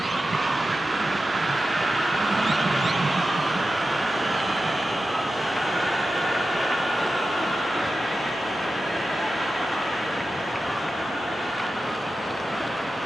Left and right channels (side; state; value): both; normal; correlation 0.92